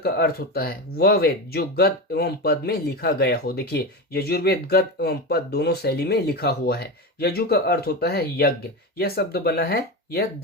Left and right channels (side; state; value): both; normal; correlation 0.20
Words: अर्थ होता है वह वेद जो गद एवं पद में लिखा गया हो। देखिए, यजुर्वेद गद एवं पद दोनों शैली में लिखा हुआ है। यजु का अर्थ होता है यज्ञ। यह शब्द बना है यद